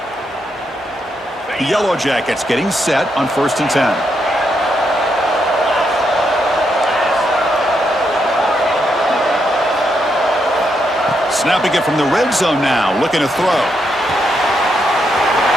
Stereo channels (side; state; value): both; normal; correlation 0.80